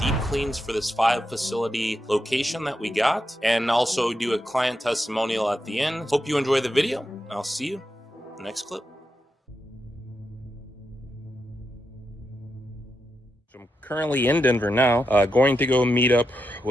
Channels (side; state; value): both; normal; correlation 0.86